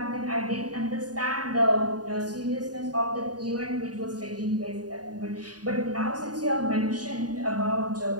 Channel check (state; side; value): late; left; 0.68 ms